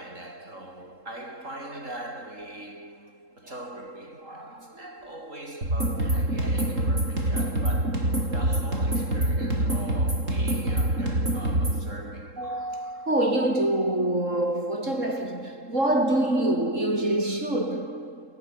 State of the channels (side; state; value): left; late; 3.7 ms